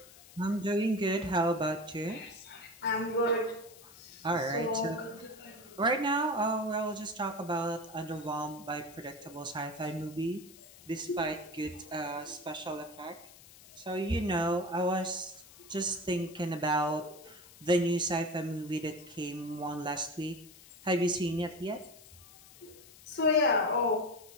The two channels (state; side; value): noise; left; hiss, 21 dB below the sound